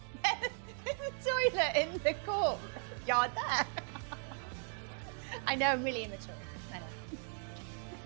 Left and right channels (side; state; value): left; silent; 53 dB below the other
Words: a toilet in the courtyard there. I know, I'm really immature. I know.